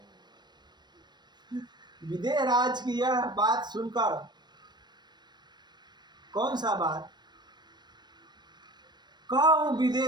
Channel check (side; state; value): left; late; 0.21 ms